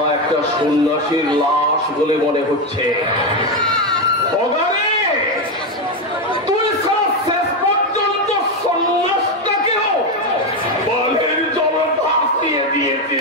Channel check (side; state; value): both; normal; correlation 0.09